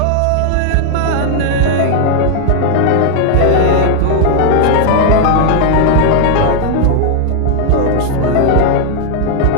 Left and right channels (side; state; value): both; different; correlation 0.00